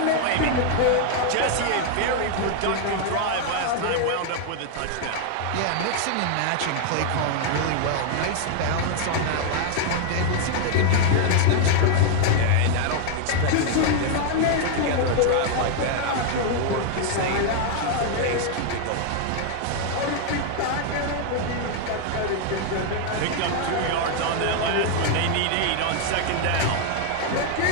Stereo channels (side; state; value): both; different; correlation 0.00